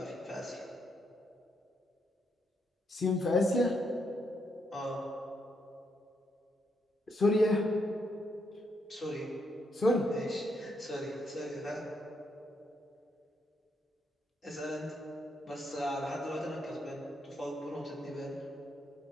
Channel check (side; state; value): both; normal; correlation 0.78